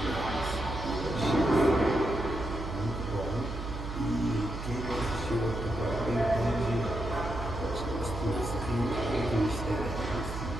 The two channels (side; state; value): right; noise; hum, 7 dB below the sound